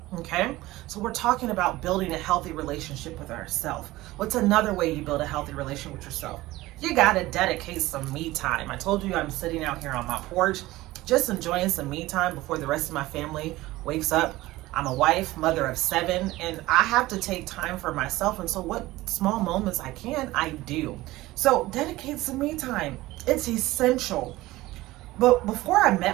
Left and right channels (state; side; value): quieter; left; 18.1 dB